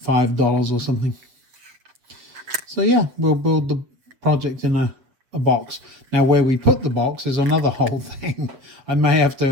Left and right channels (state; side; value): late; left; 7.7 ms